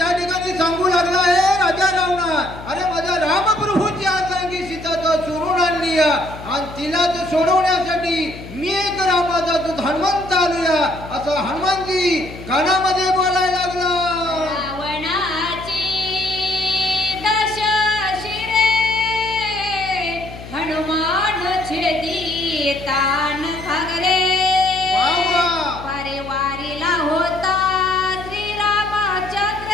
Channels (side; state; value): left; noise; hum, 14 dB below the sound